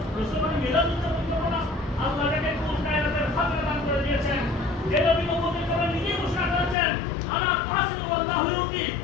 রাসূলের মিলাদ উদযাপন করব না? আল্লাহ যাকে কুল কায়নাতের খাজনা দান করে দিয়েছেন, যে নবী মুহাম্মদ করে নিজে ঘোষণা করেছেন আনা কাসিমু আল্লাহু ইউতি,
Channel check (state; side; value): drops out; right; at 6.8 s